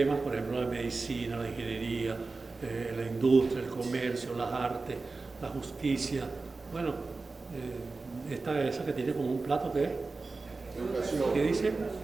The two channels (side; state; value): left; quieter; 3.8 dB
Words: por ejemplo, la medicina, la ingeniería, la industria, el comercio, las artes, la justicia. Bueno, esa que tiene como un plato, ¿qué es? Educación. ¿Qué dice?